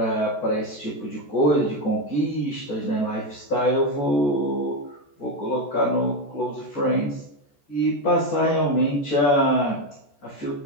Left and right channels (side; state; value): right; late; 14 ms